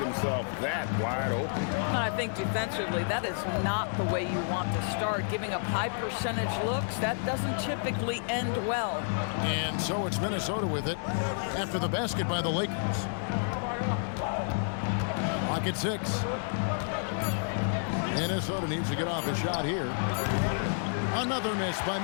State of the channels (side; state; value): right; silent; digital silence